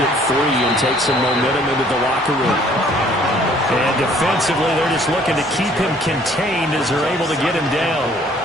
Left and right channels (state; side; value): normal; both; correlation 0.58